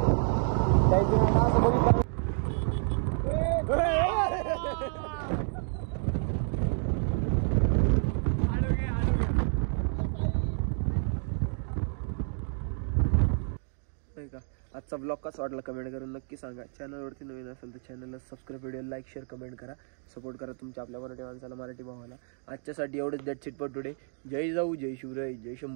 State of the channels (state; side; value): silent; left; 55 dB below the other